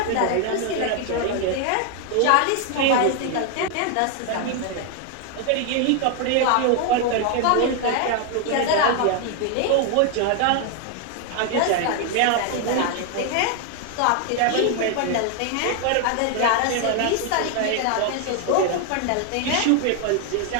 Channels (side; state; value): both; different; correlation 0.00